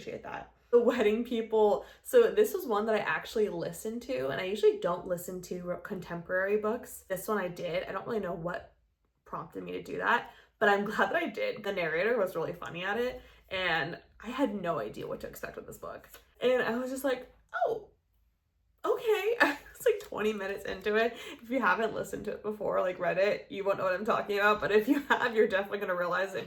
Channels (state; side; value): identical; both; correlation 1.00